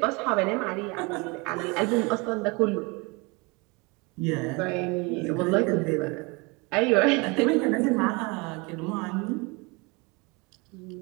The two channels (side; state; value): left; quieter; 27.9 dB